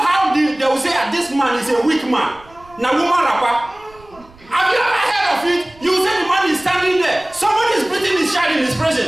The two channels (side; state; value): right; noise; rumble, 26 dB below the sound